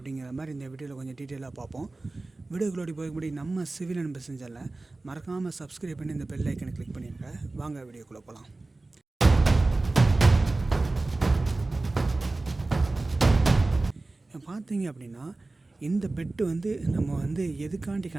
மாதிரி இந்த வீடியோவில் கொஞ்சம் டீட்டெயிலாக பார்ப்போம். வீடியோக்குள்ளோடி போய்படி நம்ம சிவில் அண்ட் பிஸ்னஸ் சேனலில் மறக்காமல் சப்ஸ்கிரைப் பண்ணி இந்த பெல் ஐக்கனை கிளிக் பண்ணிடுங்க. வாங்க வீடியோக்குள்ளே போகலாம். பார்த்தீங்க அப்படின்னா இந்த பெட்டு நம்ம எதுக்காண்டி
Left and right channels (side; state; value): left; quieter; 3.2 dB